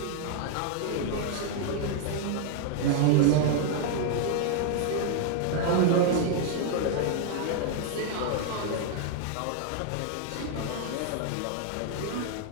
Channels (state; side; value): different; both; correlation 0.00